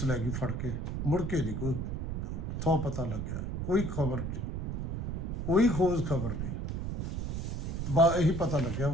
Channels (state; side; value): noise; right; rumble, 3 dB below the sound